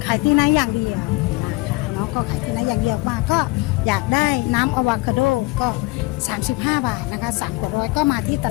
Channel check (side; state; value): right; quieter; 22.6 dB